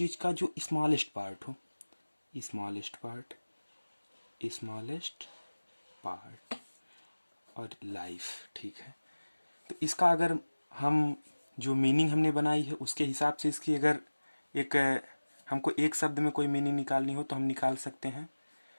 का जो स्मॉलेस्ट पार्ट हो। स्मॉलेस्ट पार्ट, स्मॉलेस्ट पार्ट और लाइफ, ठीक है। तो इसका अगर हम जो मीनिंग हमने बनाई है उसके हिसाब से इसकी अगर एक हमको एक शब्द में कोई मीनिंग निकालनी हो तो हम निकाल सकते हैं।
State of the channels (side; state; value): both; inverted; correlation -1.00